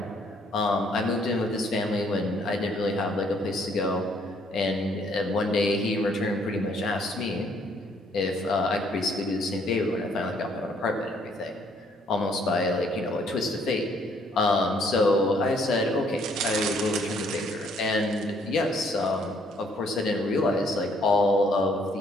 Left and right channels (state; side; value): normal; both; correlation 0.66